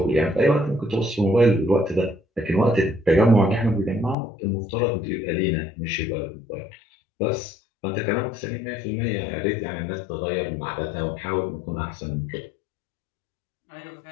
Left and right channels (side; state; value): right; drops out; at 4.2 s